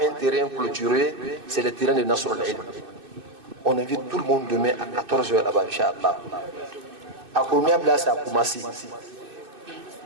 un terrain clôturé, c'est le terrain de Nasr al-Ilm. On invite tout le monde demain à 14h là-bas, Inch'Allah. À Kouroumiabla, c'est à Koumassi.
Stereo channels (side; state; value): left; late; 2.6 ms